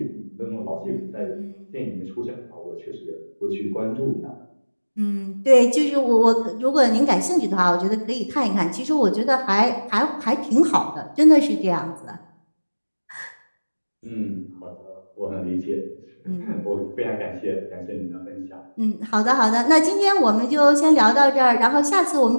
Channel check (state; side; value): inverted; both; correlation -1.00